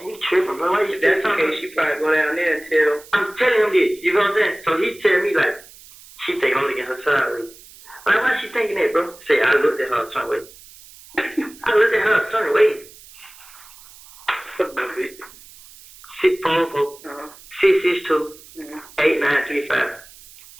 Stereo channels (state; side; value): noise; right; hiss, 21 dB below the sound